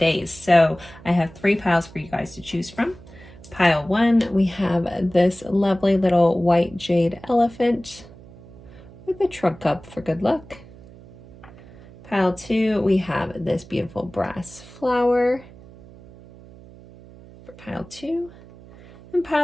So I have 3 piles for you guys to choose from. Pile 1, we have this lovely little white jade elephant with a trunk cup for good luck. Pile 2, we have this beautiful brass flower for pile 2. And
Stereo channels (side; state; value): right; noise; hum, 20 dB below the sound